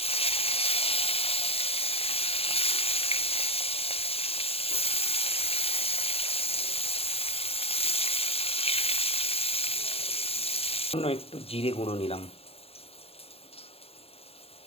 একটু জিরে গুঁড়ো নিলাম,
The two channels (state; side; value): late; right; 0.29 ms